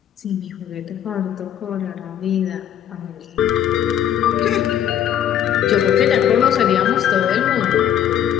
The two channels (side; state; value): right; quieter; 10.2 dB